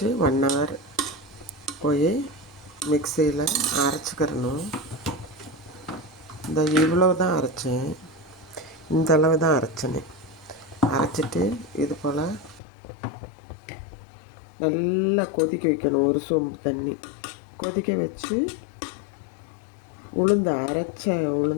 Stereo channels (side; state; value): right; drops out; at 12.6 s